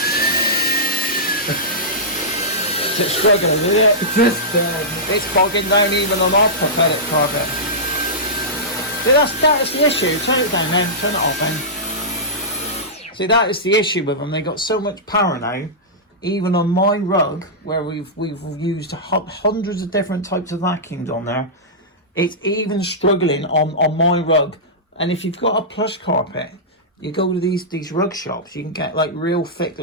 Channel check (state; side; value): normal; both; correlation -0.14